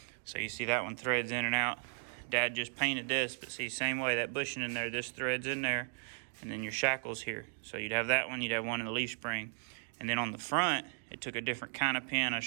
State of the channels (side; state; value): left; silent; digital silence